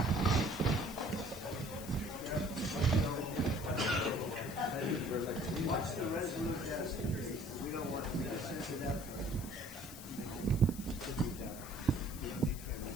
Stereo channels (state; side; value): noise; left; hiss, 13 dB below the sound